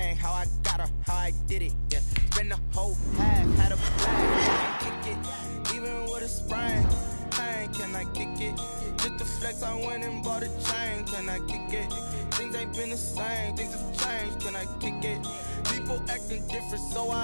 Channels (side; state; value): both; inverted; correlation -1.00